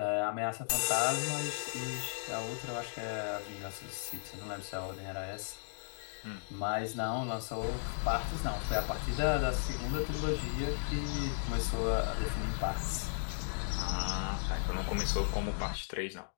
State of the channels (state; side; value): silent; right; digital silence